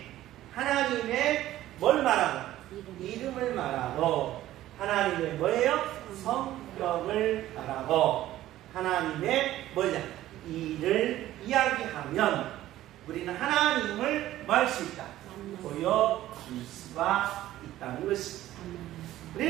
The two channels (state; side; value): quieter; left; 14.3 dB